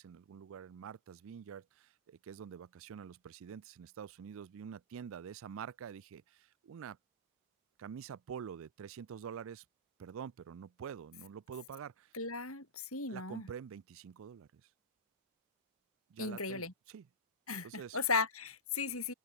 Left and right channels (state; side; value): normal; both; correlation -0.19